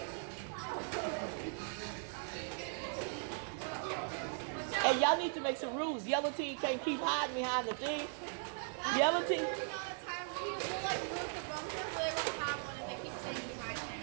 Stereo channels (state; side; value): silent; left; 52 dB below the other